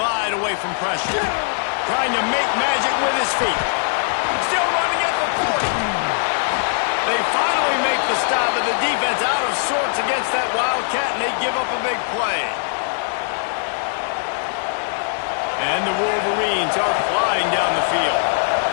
away from pressure. Trying to make magic with his feet. Still running at the 40. They finally make the stop, but the defense out of sorts against that Wildcat, and they give up a big play. And the Wolverines are flying down the field.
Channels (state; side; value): silent; right; digital silence